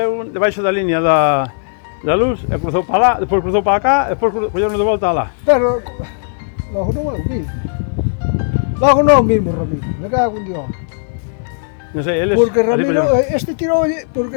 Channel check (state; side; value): silent; right; digital silence